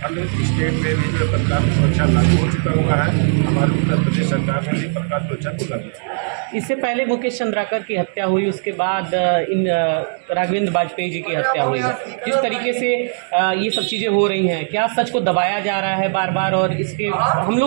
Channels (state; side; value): silent; left; digital silence